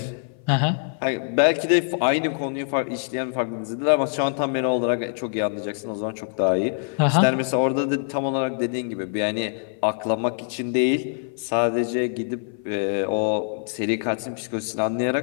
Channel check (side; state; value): right; silent; 56 dB below the other